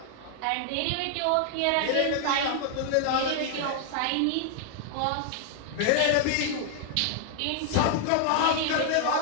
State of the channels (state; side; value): different; both; correlation 0.00